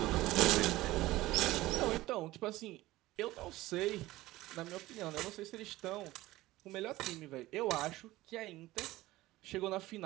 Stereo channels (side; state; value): left; quieter; 17.5 dB